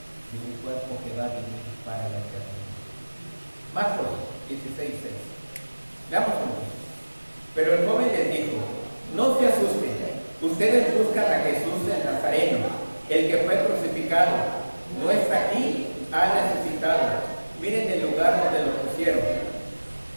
y un cuerpo que va a vivir para la eternidad. Marcos 16:6. Veamos cómo. Pero el joven les dijo: no se asusten, ustedes buscan a Jesús el Nazareno, el que fue crucificado. No está aquí, ha resucitado. Miren el lugar donde lo pusieron.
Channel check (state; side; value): inverted; both; correlation -1.00